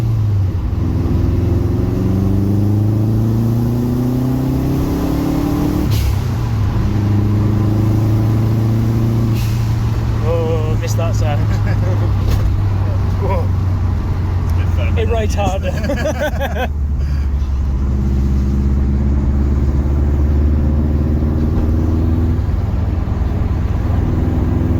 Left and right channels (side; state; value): both; identical; correlation 1.00